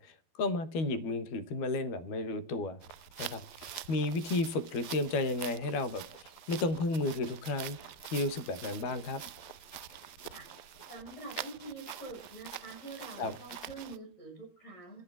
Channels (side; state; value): right; late; 12 ms